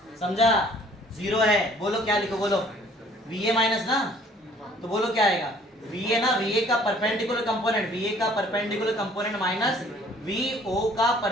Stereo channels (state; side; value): normal; both; correlation 0.56